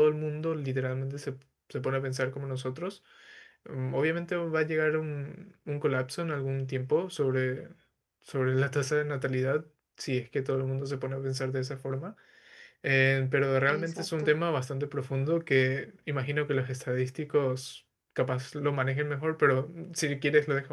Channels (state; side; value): identical; both; correlation 1.00